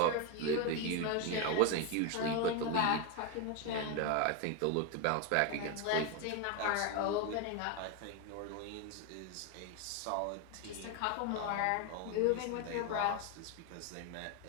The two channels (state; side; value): different; both; correlation 0.02